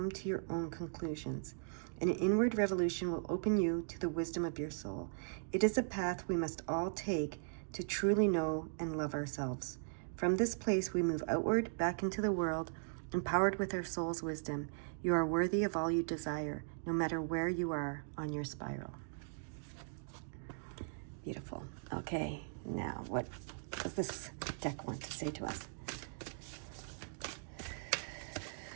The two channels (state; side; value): silent; left; digital silence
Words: to your own conclusions. An inward revolution will open you to the wisdom of your soul. It is a path we must all take to truly know and love ourselves. From this place, we move outward, back into the world, empowered with our soul's wisdom. You are worthy of all you desire, no matter where you are on your spiral. Beautiful. Okay, now what does this deck want to say to us?